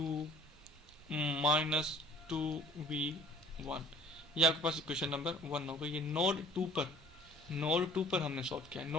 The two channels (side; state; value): both; normal; correlation 0.51